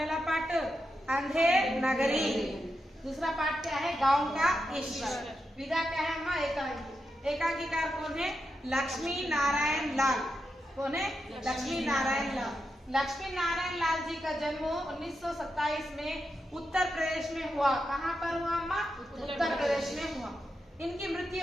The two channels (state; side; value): normal; both; correlation 0.86